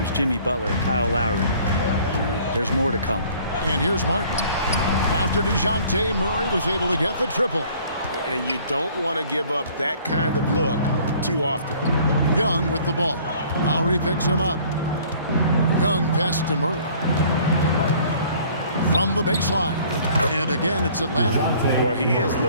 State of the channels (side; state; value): both; inverted; correlation -0.54